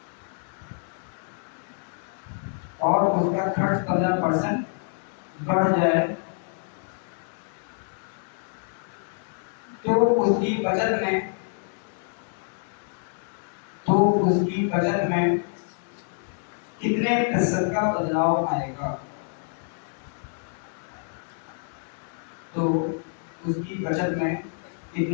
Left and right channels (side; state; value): right; silent; 60 dB below the other